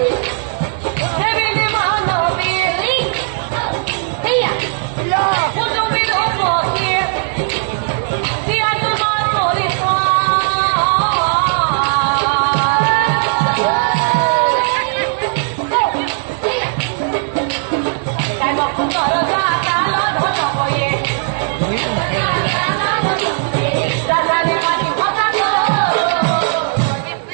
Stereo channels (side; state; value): left; silent; digital silence